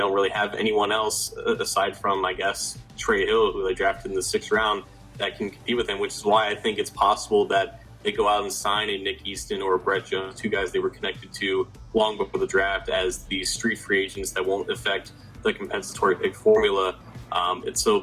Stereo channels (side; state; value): both; identical; correlation 1.00